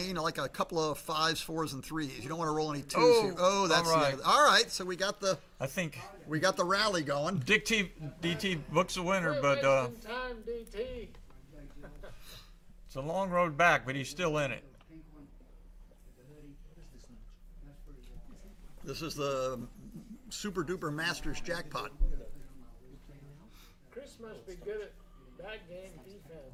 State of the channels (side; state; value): both; identical; correlation 1.00